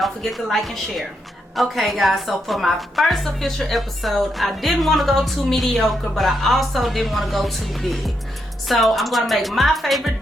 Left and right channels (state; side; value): normal; both; correlation 0.81